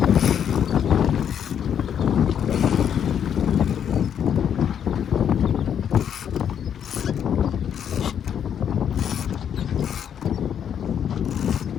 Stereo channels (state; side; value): quieter; right; 8.7 dB